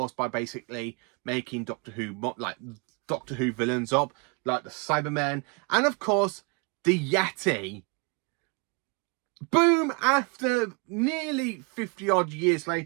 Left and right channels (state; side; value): quieter; left; 32.8 dB